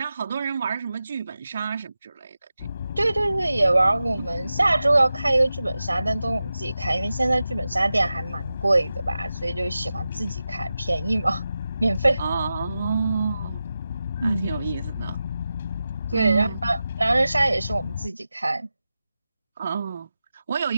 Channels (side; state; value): both; inverted; correlation -0.92